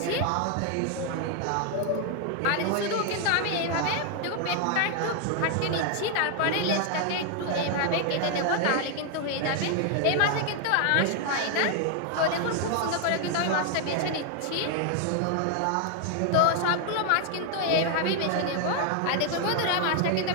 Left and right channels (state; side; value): different; both; correlation 0.00